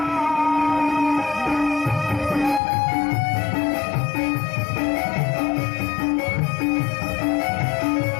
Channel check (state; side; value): drops out; right; at 2.6 s